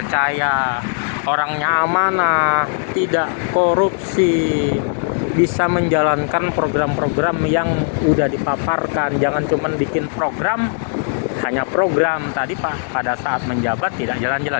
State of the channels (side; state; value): right; silent; digital silence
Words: orangnya amanah, tidak korupsi, bisa menjalankan program-program yang udah dipaparkan. Jangan cuma bikin program, hanya program tadi Pak pada saat menjabat tidak jalan-jalan,